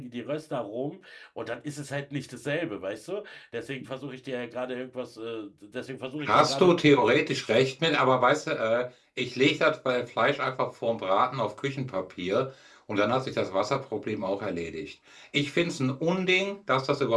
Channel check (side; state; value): both; identical; correlation 1.00